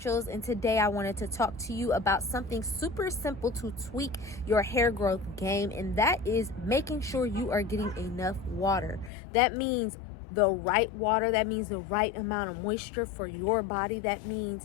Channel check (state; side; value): drops out; right; at 9.1 s